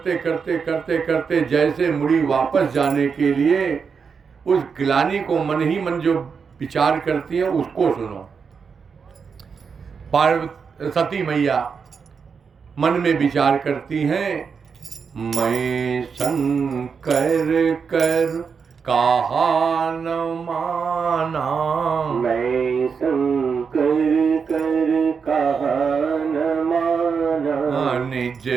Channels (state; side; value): quieter; left; 5.9 dB